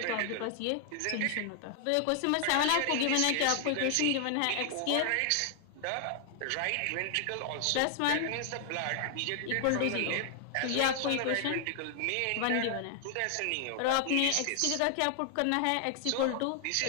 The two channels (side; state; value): both; different; correlation 0.00